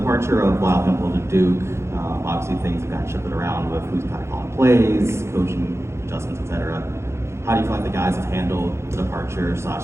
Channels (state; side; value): late; left; 0.13 ms